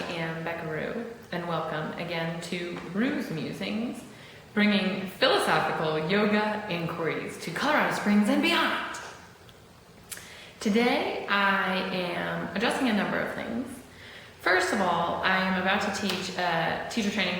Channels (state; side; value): identical; both; correlation 1.00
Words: am Becca and welcome again to Roos Musings, bringing philosophical yoga inquiries to Colorado Springs and beyond. Today I am addressing a number of things. First of all, I am about to teach teacher training